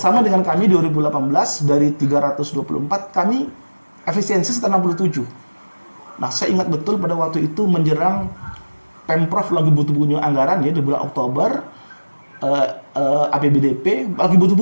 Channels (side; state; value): both; inverted; correlation -1.00